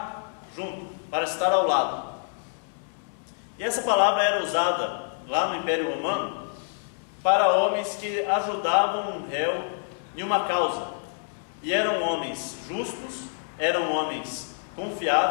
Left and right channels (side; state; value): right; silent; digital silence